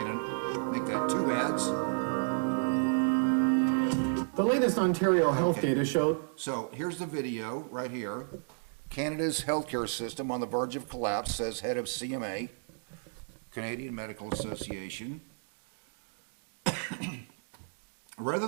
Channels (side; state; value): left; silent; digital silence